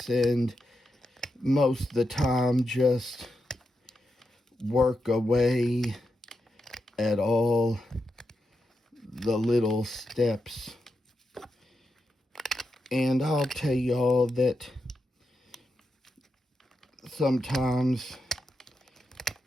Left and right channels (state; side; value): normal; both; correlation 0.86